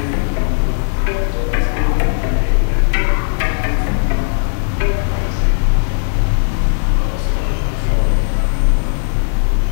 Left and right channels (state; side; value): silent; right; 69 dB below the other